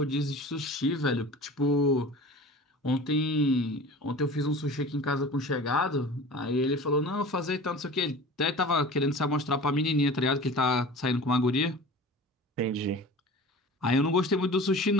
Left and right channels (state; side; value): normal; both; correlation 0.39